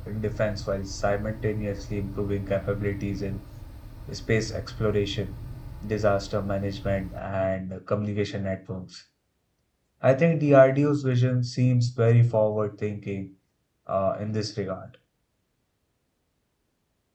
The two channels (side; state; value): both; identical; correlation 1.00